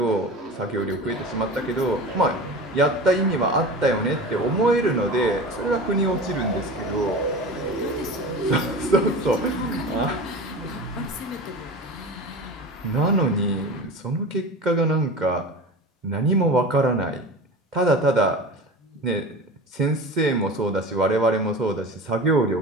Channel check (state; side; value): normal; both; correlation 0.33